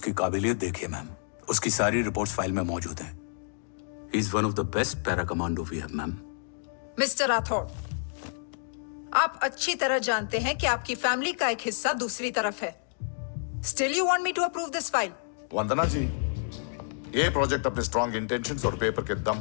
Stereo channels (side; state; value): right; silent; digital silence